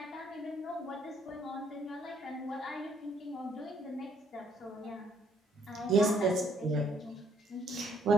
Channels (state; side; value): normal; both; correlation 0.66